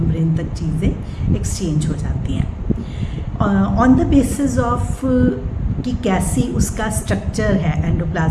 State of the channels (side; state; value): both; identical; correlation 1.00